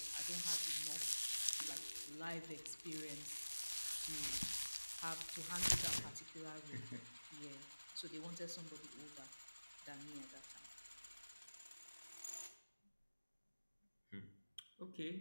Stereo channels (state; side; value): inverted; both; correlation -1.00